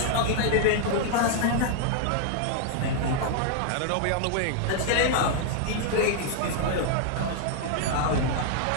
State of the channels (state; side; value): different; both; correlation -0.01